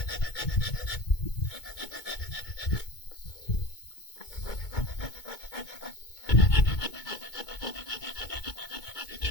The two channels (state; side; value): late; right; 2.2 ms